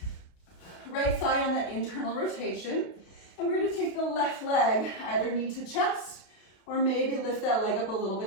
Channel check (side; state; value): right; late; 32 ms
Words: Right thigh on that internal rotation. And we're going to take the left leg, either knee to chest, or maybe lift that leg up a little